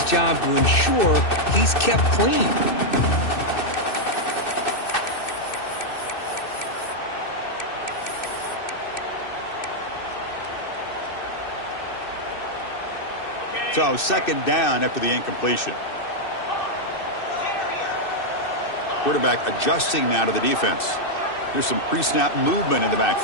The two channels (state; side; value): late; right; 2.6 ms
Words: job to ensure he's kept clean. So second down after the incompletion. Quarterback adjusting now to the defense. Here's some pre-snap movement in the